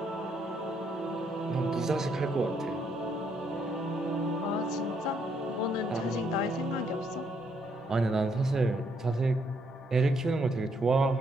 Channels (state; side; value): normal; both; correlation 0.73